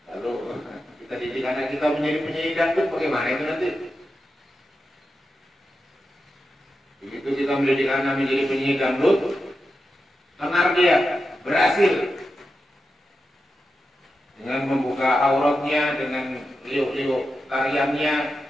Lalu kita didik anak kita menjadi penyanyi dangdut, bagaimana itu nanti? Begitu kita mendidik anak menjadi penyanyi dangdut, tenar dia berhasil dengan membuka auratnya, dengan liuk-liuk tariannya.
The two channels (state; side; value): normal; both; correlation 0.90